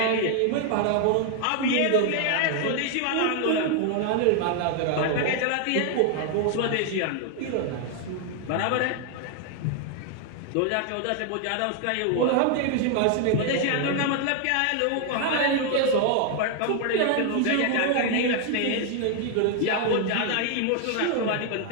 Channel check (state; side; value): different; both; correlation 0.00